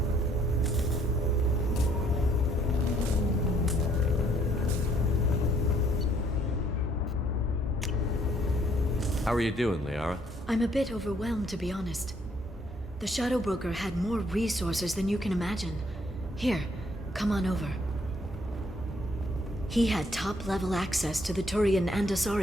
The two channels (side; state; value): both; normal; correlation 0.66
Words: How are you doing, Liara? I'm a bit overwhelmed, to be honest. The Shadow Broker had more resources than you can imagine. Here, come on over. He had top-level access to the Turian and